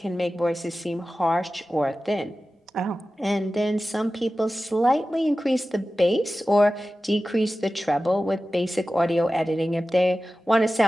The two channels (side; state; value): both; normal; correlation 0.95